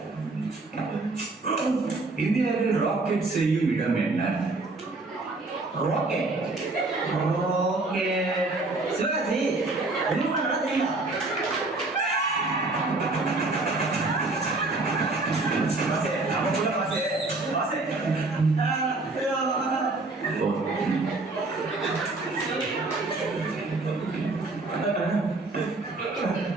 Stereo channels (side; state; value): left; quieter; 3.3 dB